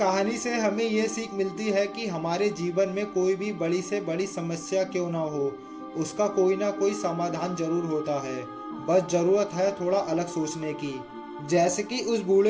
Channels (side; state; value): both; identical; correlation 1.00